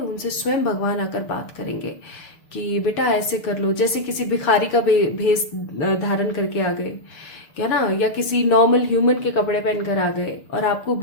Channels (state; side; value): late; right; 6.7 ms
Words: स्वयं भगवान आकर बात करेंगे कि बेटा ऐसे कर लो। जैसे किसी भिखारी का भेष धारण करके आ गए, क्या ना, या किसी नॉर्मल ह्यूमन के कपड़े पहनकर आ गए और आपको